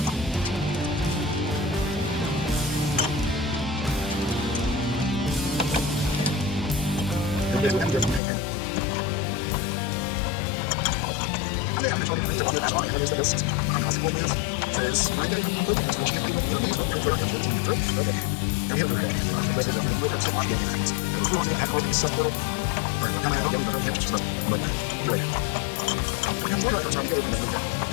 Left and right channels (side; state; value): right; drops out; at 8.2 s